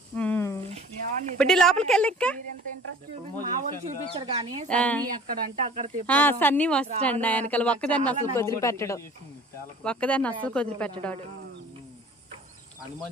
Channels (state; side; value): normal; both; correlation 0.47